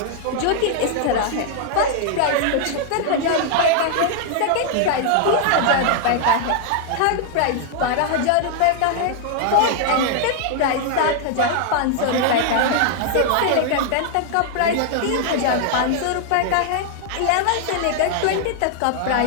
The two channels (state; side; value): different; both; correlation 0.00